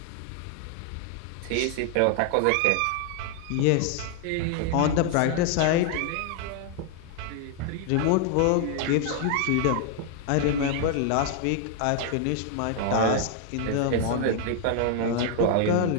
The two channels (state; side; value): different; both; correlation 0.00